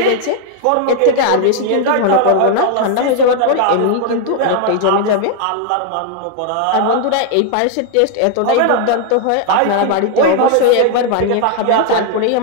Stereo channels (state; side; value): different; both; correlation 0.00